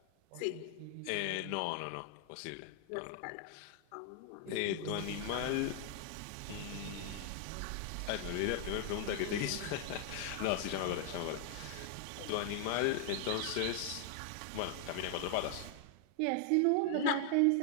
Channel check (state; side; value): different; both; correlation 0.00